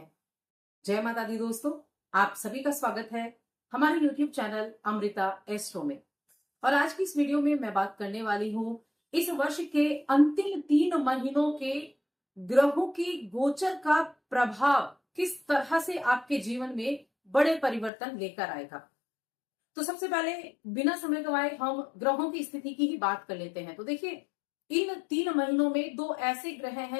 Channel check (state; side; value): drops out; right; at 17.9 s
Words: जय माता दी दोस्तों, आप सभी का स्वागत है हमारे YouTube चैनल अमृता एस्ट्रो में। और आज की इस वीडियो में मैं बात करने वाली हूं इस वर्ष के अंतिम 3 महीनों के ग्रहों की गोचर का प्रभाव किस तरह से आपके जीवन में बड़े परिवर्तन लेकर आएगा। तो सबसे पहले बिना समय गवाए हम ग्रहों की स्थिति की ही बात कर लेते हैं। तो देखिए, इन 3 महीनों में 2 ऐसे ग्रह